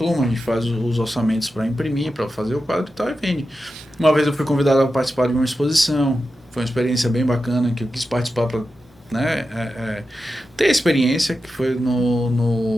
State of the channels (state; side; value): noise; left; hum, 28 dB below the sound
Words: a gente faz os orçamentos para imprimir, para fazer o quadro e tal, e vende. Uma vez eu fui convidado a participar de uma exposição, foi uma experiência bem bacana, que eu quis participar para ter experiência, que foi